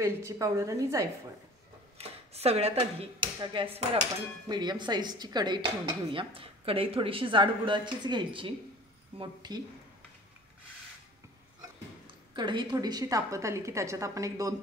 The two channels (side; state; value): both; normal; correlation 0.45